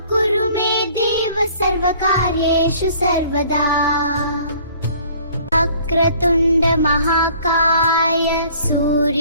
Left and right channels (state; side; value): inverted; both; correlation -0.54